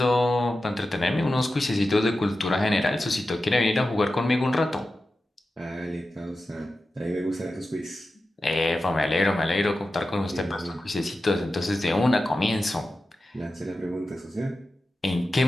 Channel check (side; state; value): both; normal; correlation 0.93